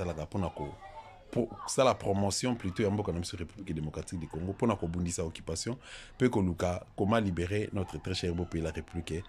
pour ça la promotion plutôt en boka na République démocratique du Congo pour na ko bundisa occupation peut que Luka comment libérer notre très cher beau pays la République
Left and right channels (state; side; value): identical; both; correlation 1.00